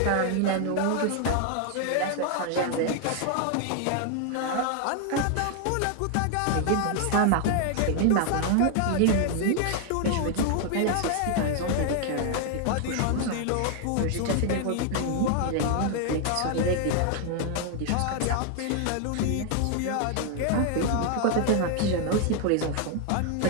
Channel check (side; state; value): both; different; correlation 0.00